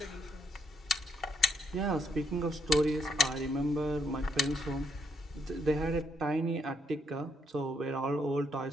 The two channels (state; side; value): normal; both; correlation 0.74